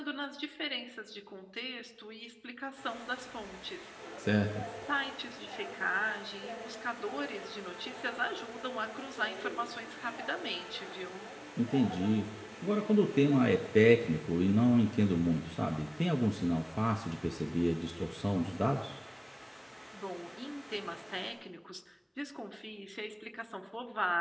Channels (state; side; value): identical; both; correlation 1.00